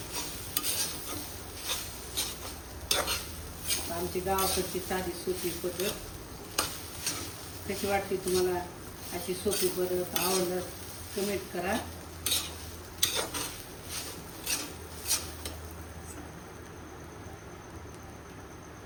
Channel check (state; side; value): identical; both; correlation 1.00